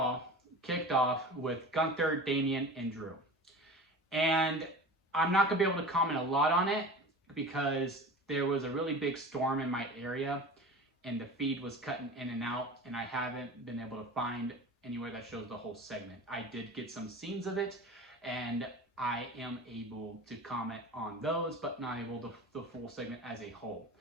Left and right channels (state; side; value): normal; both; correlation 0.35